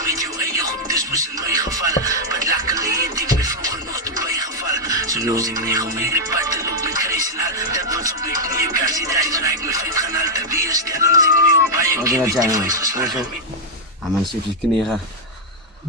met jou en je goed is moest in mijn geval. Wat luckily het ik me vroeger nog te bijgevallen. Zo los ik niet om in de pad te lopen met kruis en al. Dat was op mijn knieën. Kan ze daar is ik me vet gaan al te weer stellen. Als ik nu op bij je Wat keer wil met dat die zijn, vuist geslagen. Ah, man, zit je kneren.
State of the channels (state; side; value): normal; both; correlation -0.02